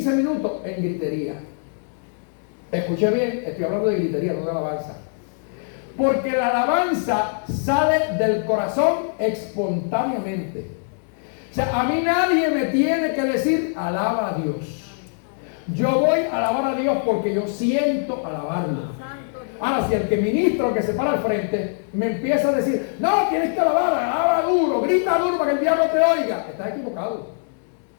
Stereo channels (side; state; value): right; silent; digital silence